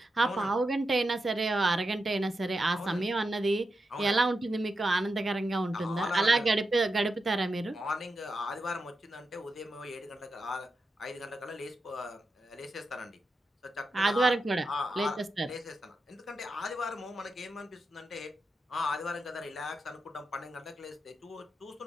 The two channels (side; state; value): both; normal; correlation 0.88